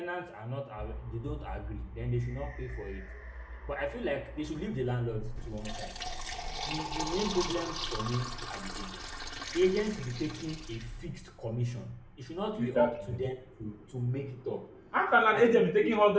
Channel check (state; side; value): identical; both; correlation 1.00